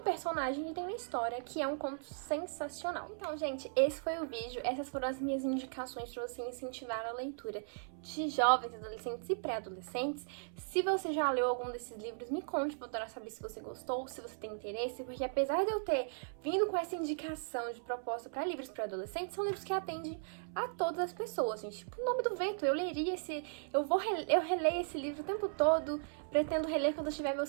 que tem uma história, que é um conto sensacional. Então, gente, esse foi o vídeo. Essas foram as minhas indicações para você incentivar a leitura de jovens, adolescentes e pré-adolescentes. Se você já leu algum desses livros, me conte, pra eu adorar saber se você gostou, se você tem interesse, porque apesar de eu ter vindo com essa indicação de proposta para livros para adolescentes, são livros que atendem a todas as pessoas, gente. Tipo, O Nome do Vento, eu leria eu releio esse livro o tempo todo, pretendo reler quando eu tiver meus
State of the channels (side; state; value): left; silent; 53 dB below the other